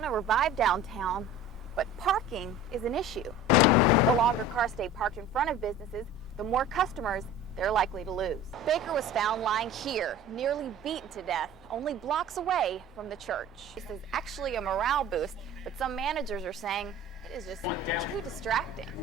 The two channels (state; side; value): normal; both; correlation 0.40